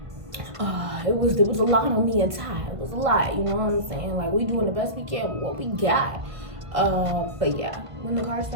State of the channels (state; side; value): late; left; 1.5 ms